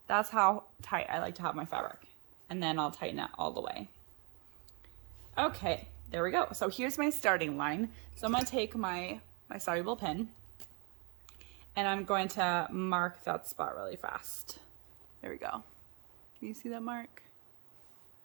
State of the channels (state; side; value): quieter; left; 32.7 dB